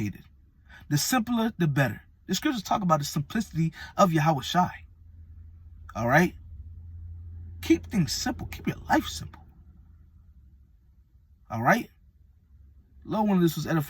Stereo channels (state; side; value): identical; both; correlation 1.00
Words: The simpler, the better. The scriptures talk about the simplicity of Yahushai. All right? Keep things simple. Keep your life simple. All right? Lord, one of this was